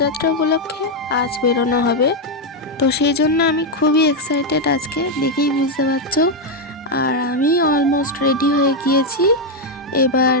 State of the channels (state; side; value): normal; both; correlation 0.03